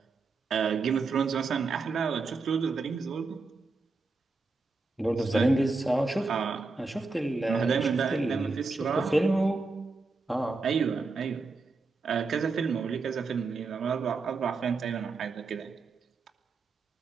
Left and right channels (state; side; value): quieter; left; 3.9 dB